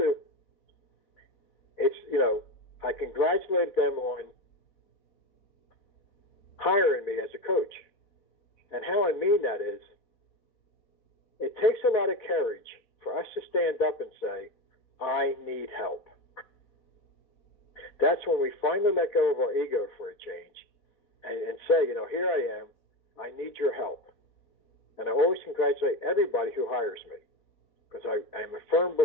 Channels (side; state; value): right; late; 3.8 ms